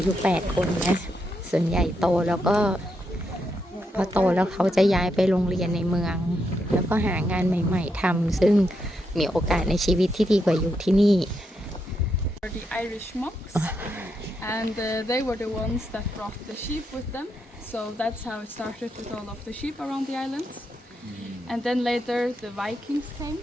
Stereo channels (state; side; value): normal; both; correlation 0.81